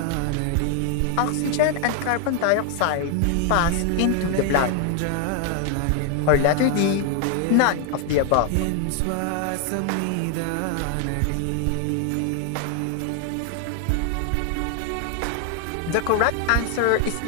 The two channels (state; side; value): different; both; correlation 0.00